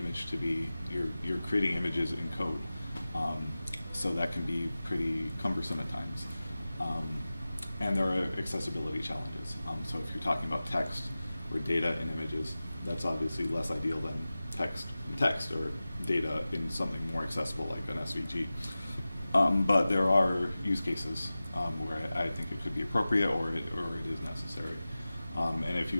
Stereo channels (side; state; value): both; inverted; correlation -0.96